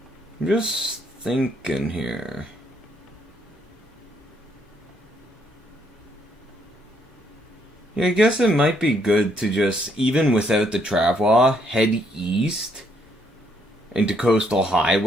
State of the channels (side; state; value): both; normal; correlation 0.71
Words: just thinking here. Yeah, I guess it might be good to just, even without the travois, head east into Coastal